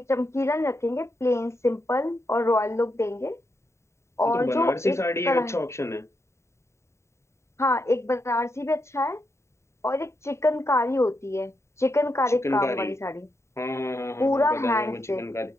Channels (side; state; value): right; late; 0.14 ms